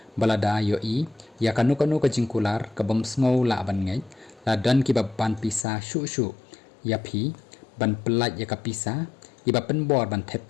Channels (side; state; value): right; drops out; at 5.7 s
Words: balada yo I ya kanu ka jingkular ka bom sngow la ban ngai la dan ki ban pisa shu iaphi ban pelat ya ka pisa iba penbor ban thep